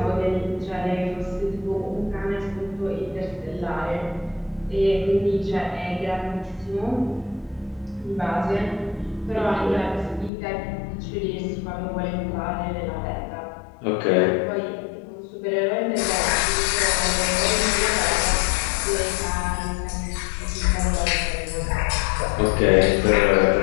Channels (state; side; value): drops out; right; at 10.3 s